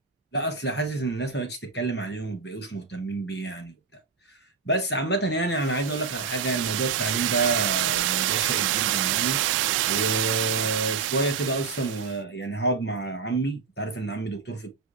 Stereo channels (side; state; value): left; quieter; 5.2 dB